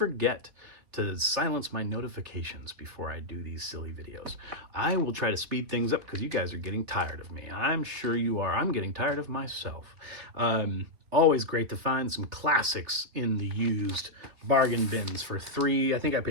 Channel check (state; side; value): late; left; 3.2 ms